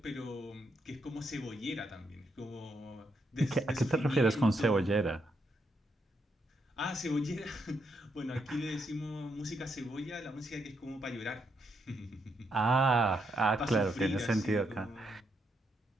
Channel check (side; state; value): both; normal; correlation 0.78